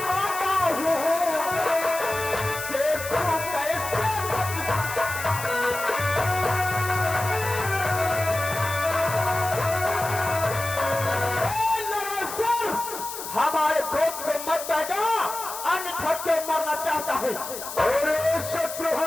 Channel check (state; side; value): noise; left; hiss, 9 dB below the sound